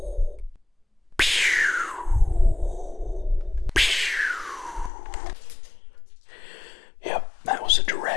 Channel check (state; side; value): drops out; right; at 4.9 s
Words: Yep, that was a